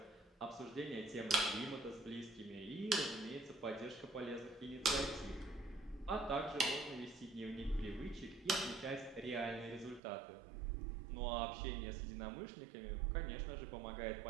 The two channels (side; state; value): left; drops out; at 10.0 s